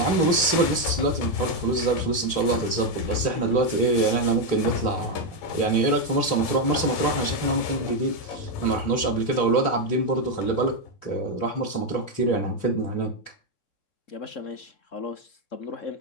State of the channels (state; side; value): late; right; 3.4 ms